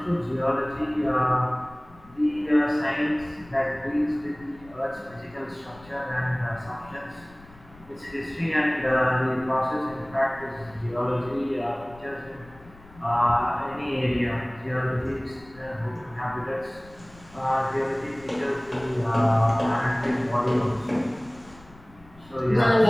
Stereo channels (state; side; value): noise; left; rumble, 23 dB below the sound